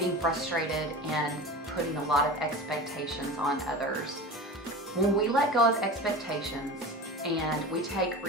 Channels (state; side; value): normal; both; correlation 0.32